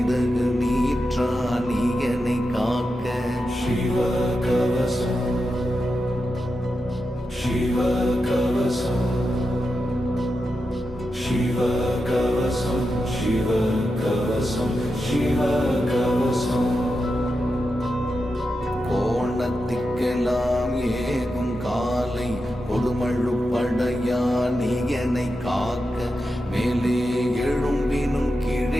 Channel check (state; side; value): normal; both; correlation 0.89